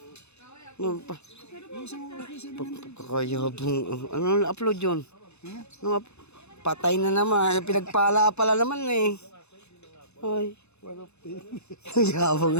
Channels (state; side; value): late; right; 0.81 ms